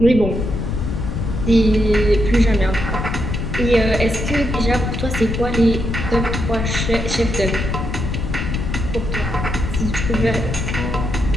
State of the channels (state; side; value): noise; left; rumble, 3 dB below the sound